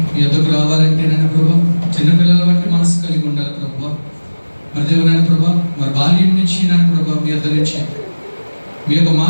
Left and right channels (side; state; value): both; inverted; correlation -1.00